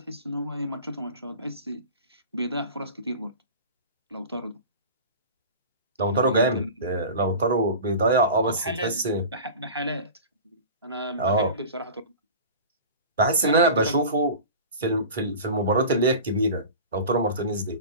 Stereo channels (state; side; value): inverted; both; correlation -0.36